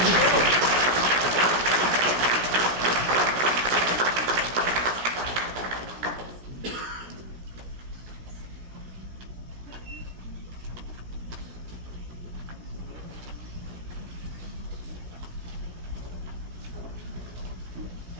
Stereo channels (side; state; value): left; late; 17 ms